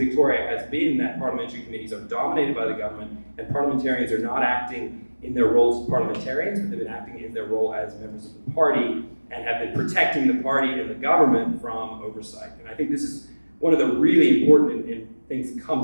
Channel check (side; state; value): both; inverted; correlation -1.00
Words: has been that parliamentary committees are dominated by the government and parliamentarians are not acting in their roles as parliamentarians, but they've been acting in their role as members of the party and have been protecting the party and the government from oversight. And I think this is one of the really important things that